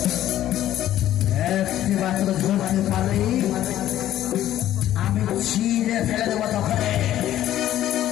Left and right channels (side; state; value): right; quieter; 12.7 dB